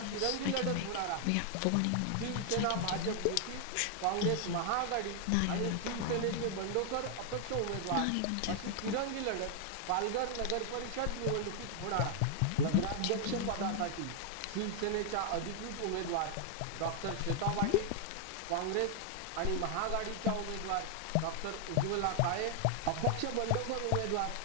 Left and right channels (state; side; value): different; both; correlation 0.00